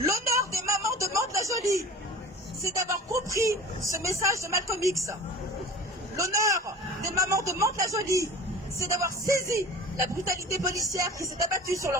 des mamans de Mantes-la-Jolie, c'est d'avoir compris ce message de Malcolm X. L'honneur des mamans de Mantes-la-Jolie, c'est d'avoir saisi la brutalité policière qui s'est abattue sur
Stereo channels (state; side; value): normal; both; correlation 0.38